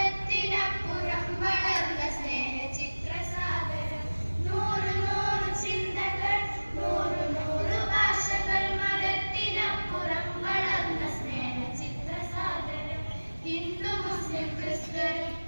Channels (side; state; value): both; inverted; correlation -1.00